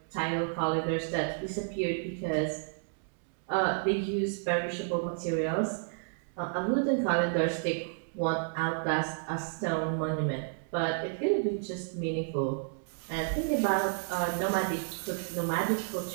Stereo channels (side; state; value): left; silent; digital silence